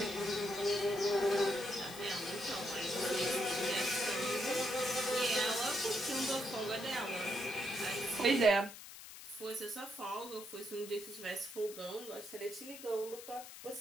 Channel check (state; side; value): noise; left; hiss, 14 dB below the sound